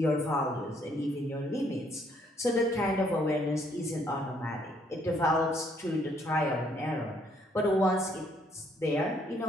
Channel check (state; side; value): normal; both; correlation 0.67